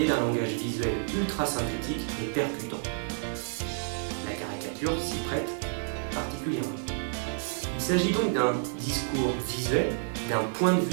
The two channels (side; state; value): left; silent; digital silence